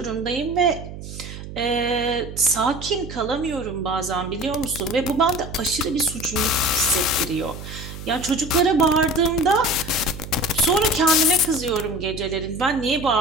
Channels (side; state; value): right; noise; hum, 11 dB below the sound